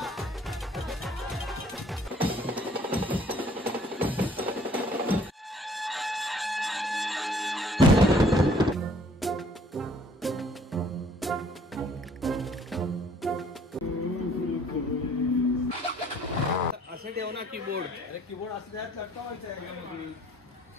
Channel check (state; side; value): normal; both; correlation 0.58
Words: असे ठेव ना कीबोर्ड. अरे कीबोर्ड असं त्यात लटकवायचं आहे